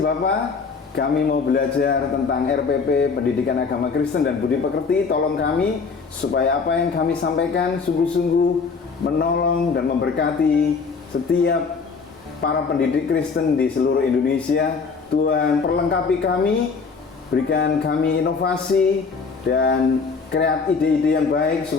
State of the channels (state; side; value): quieter; right; 5.0 dB